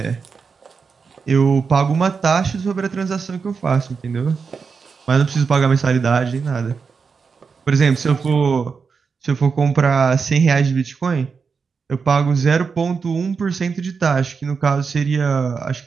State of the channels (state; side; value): quieter; left; 5.4 dB